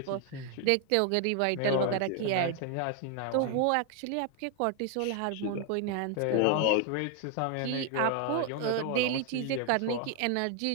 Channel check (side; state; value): both; different; correlation 0.00